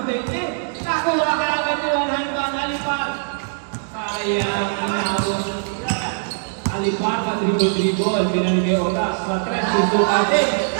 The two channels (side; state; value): left; silent; digital silence